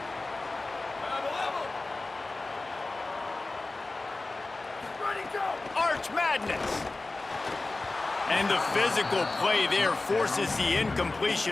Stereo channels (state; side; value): quieter; right; 3.3 dB